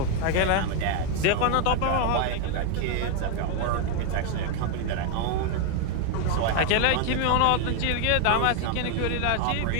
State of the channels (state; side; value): different; both; correlation 0.01